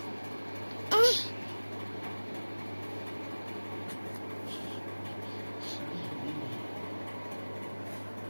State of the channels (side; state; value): both; inverted; correlation -1.00